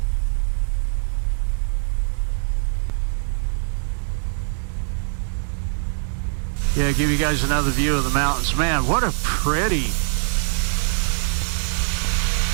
Yeah, give you guys another view of the mountains. Man, what a pretty...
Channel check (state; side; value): silent; left; digital silence